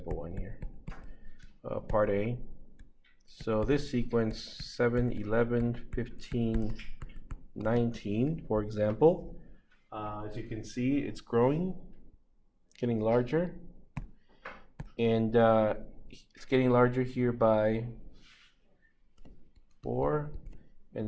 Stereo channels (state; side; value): identical; both; correlation 1.00